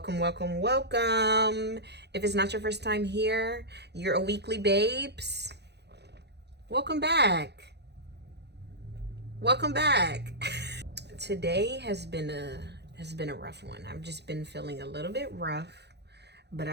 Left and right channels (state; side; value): late; left; 0.49 ms